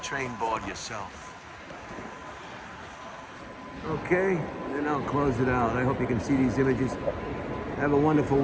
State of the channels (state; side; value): identical; both; correlation 1.00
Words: train board yourself. Okay, then I'll close it out. I hope you can see these images. Have a wonderful